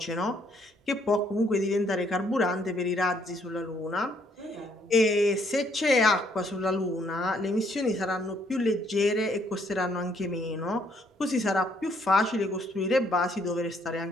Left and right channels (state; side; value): normal; both; correlation 0.68